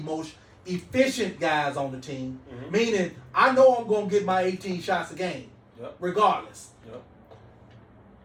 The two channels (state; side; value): identical; both; correlation 1.00